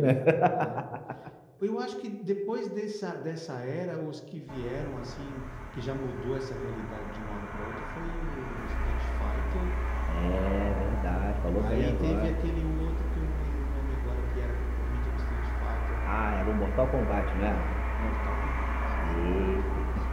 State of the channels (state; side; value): identical; both; correlation 1.00